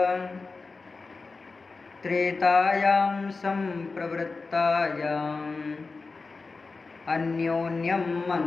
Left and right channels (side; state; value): right; quieter; 4.0 dB